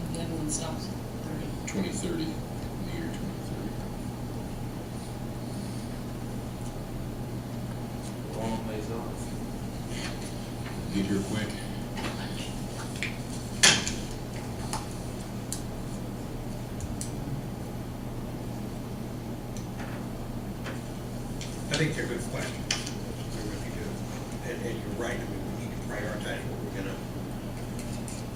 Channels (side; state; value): both; identical; correlation 1.00